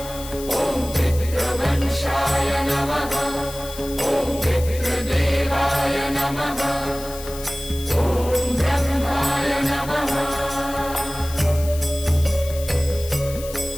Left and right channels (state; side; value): noise; left; hiss, 13 dB below the sound